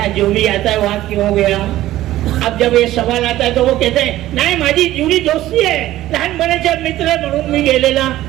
जो भी आता है वहां क्यों गया? अब जब ये सवाल आता है तो वो कहते हैं नाही माझी जुनी दोस्ती है, लहानपणाचा मित्र है म्हणून मी गेलेला.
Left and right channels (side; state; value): left; quieter; 14.8 dB